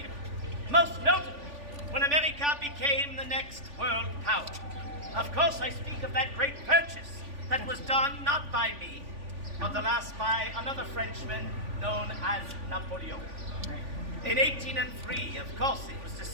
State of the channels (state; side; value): late; left; 3.5 ms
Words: Most notably, when America became the next world power. Of course, I speak of that great purchase that was done not by me, but the last by another Frenchman known as Napoleon. In 1803, of course, it was